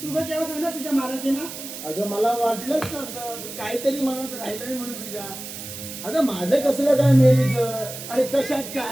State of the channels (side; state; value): right; noise; hiss, 10 dB below the sound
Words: तू काय केव्हा सांगणार तुझ्या मालाचे ना अगं मला वाटलंच नव्हतं तू काहीतरी म्हणत राहिलं म्हणून तुझ्या. अगं माझं कसलं काय मेलीचं आणि कशात